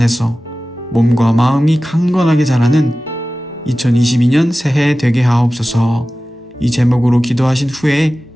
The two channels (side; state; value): both; normal; correlation 0.96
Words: 몸과 마음이 강건하게 자라는 2022년 새해 되게 하옵소서. 이 제목으로 기도하신 후에